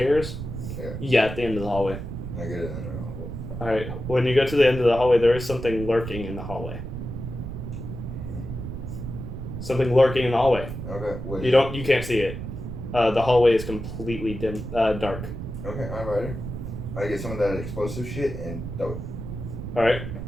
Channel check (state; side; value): noise; right; rumble, 7 dB below the sound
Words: Yeah. Yeah, at the end of the hallway. I get it in the hole. Alright, when you go to the end of the hallway, there is something lurking in the hallway. Something lurking in the hallway. Okay. What You can't see it. The hallway is completely dim, dark. Okay, I'm ready. I get some of that explosive shit and throw it. Alright.